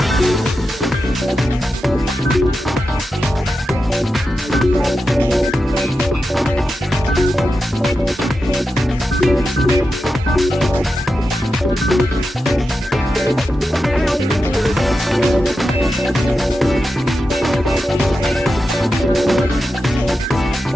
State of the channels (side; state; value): both; normal; correlation 0.90